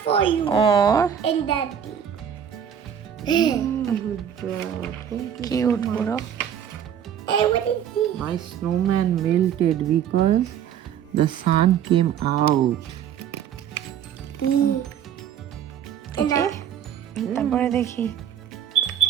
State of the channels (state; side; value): quieter; left; 9.1 dB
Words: for you ও and daddy. কিউট পুরো। Hey, what is this? My snowman melted because the sun came out. দেখি তারপরে দেখি।